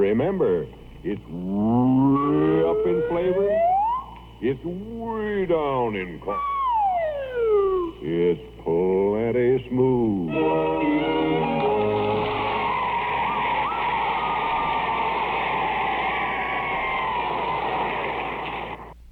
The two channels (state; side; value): identical; both; correlation 1.00